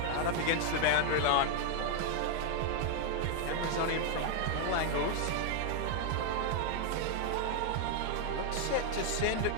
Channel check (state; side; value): different; both; correlation 0.00